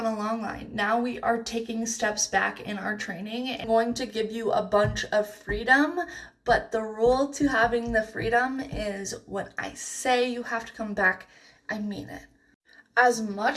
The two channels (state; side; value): identical; both; correlation 1.00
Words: a long line. Now we are taking steps back in our training. I'm going to give you a bunch of freedom, but the rule to having the freedom is when I say you have to come back, I mean it. As